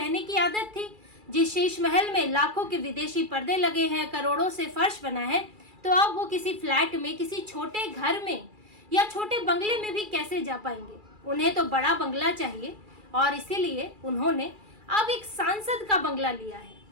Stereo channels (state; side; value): late; left; 2.3 ms